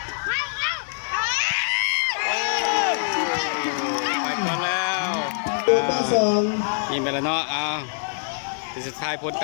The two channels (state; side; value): silent; right; 62 dB below the other